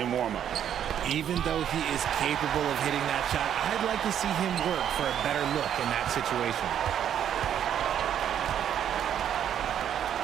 warm-up. Even though he is capable of hitting that shot, I'd like to see him work for a better look in that situation.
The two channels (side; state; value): left; quieter; 9.6 dB